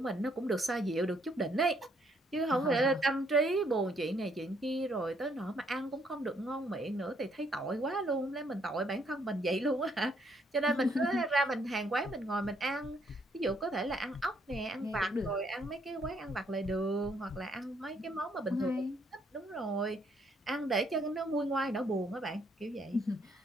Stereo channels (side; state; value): both; normal; correlation 0.70